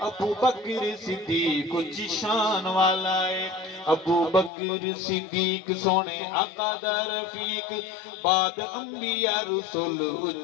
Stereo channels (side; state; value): right; drops out; at 4.5 s